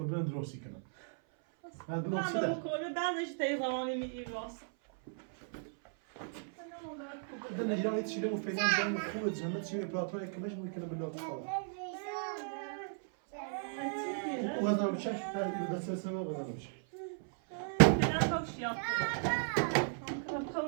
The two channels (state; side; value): silent; left; 54 dB below the other